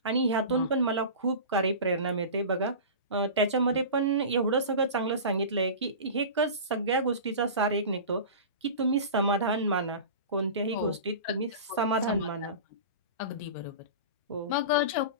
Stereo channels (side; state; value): both; inverted; correlation -0.32